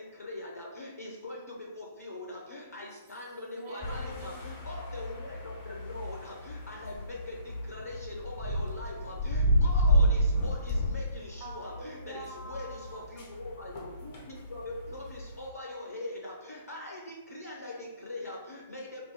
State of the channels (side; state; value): both; inverted; correlation -0.60